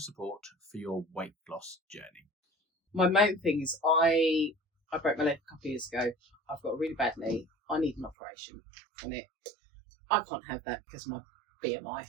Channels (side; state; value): left; drops out; at 8.2 s